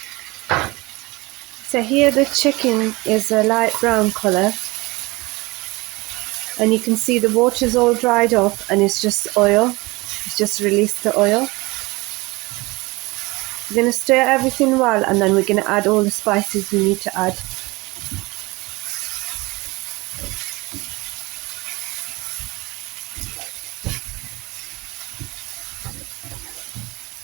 So here the chicken is a light brown colour and you can see the water's all dried off and it's just oil. It's just released the oil. We're going to stir everything well and then we're going to add all the spices we need to add.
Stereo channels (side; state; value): left; quieter; 23.2 dB